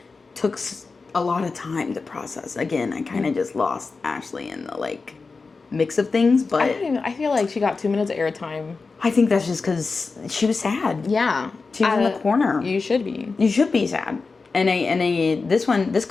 took a lot of time to process. Again, I kind of just lost Ashley in the like mix of things, but I feel like she got 2 minutes of airtime. I think that's just because she was sad. Yeah. She was in the corner. You should be. You should be sad. And this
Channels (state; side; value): quieter; right; 4.3 dB